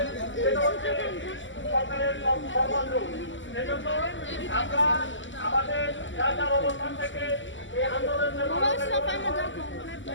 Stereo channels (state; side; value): late; right; 0.55 ms